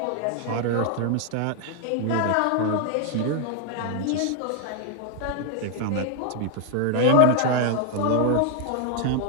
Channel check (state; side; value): different; both; correlation 0.00